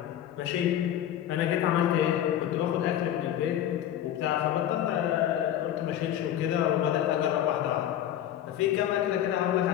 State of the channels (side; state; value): right; quieter; 11.2 dB